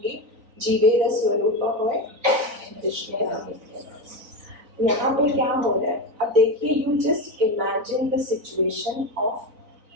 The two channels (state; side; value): late; left; 3.9 ms